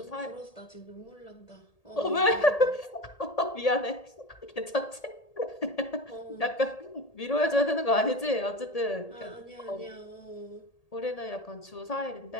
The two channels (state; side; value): late; right; 1.8 ms